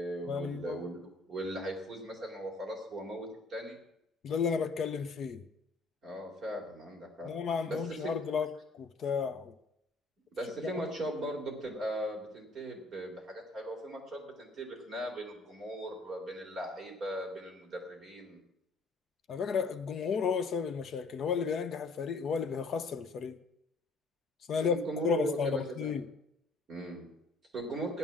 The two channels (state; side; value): quieter; right; 3.4 dB